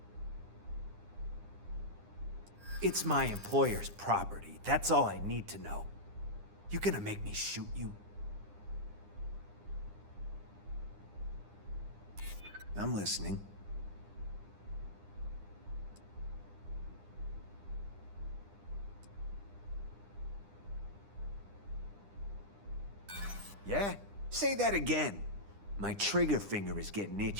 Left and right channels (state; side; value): late; left; 9.9 ms